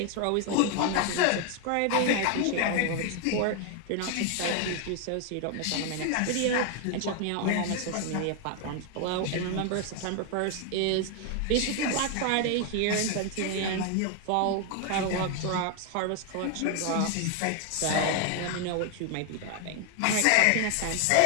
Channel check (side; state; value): both; different; correlation 0.00